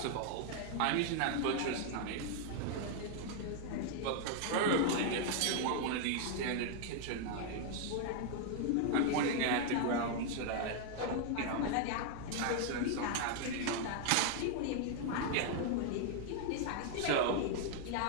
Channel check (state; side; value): different; both; correlation 0.00